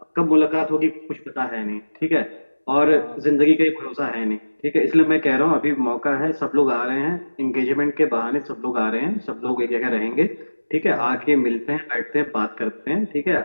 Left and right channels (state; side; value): inverted; both; correlation -1.00